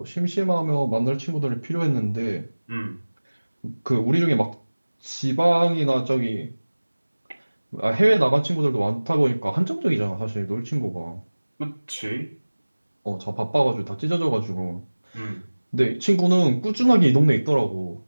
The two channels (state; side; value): inverted; both; correlation -1.00